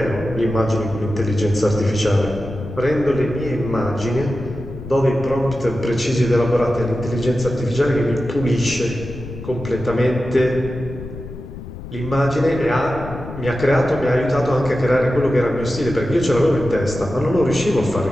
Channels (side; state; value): left; noise; rumble, 11 dB below the sound